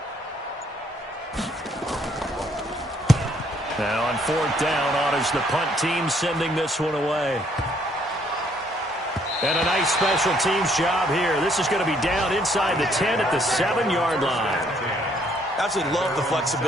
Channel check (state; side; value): normal; both; correlation 0.67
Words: Now on fourth down, honors the punt team sending this one away. And a nice special teams job here. This is going to be down inside the 10 at the 7-yard line. Absolutely love the